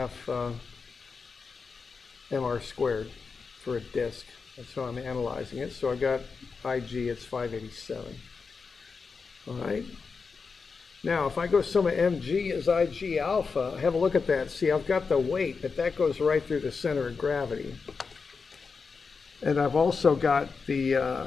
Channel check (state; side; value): quieter; right; 5.0 dB